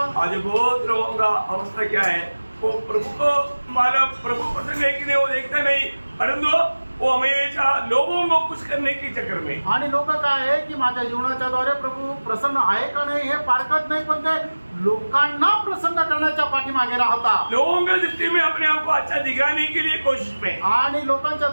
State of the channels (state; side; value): inverted; both; correlation -1.00